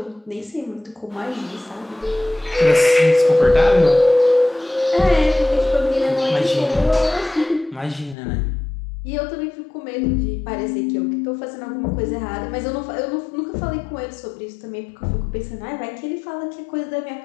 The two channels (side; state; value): right; drops out; at 8.2 s